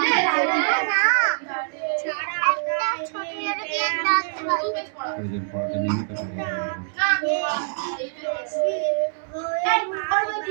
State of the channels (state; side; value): silent; left; digital silence